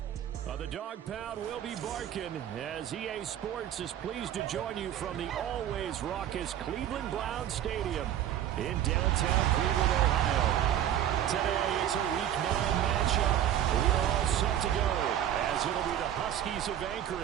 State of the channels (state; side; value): quieter; left; 11.0 dB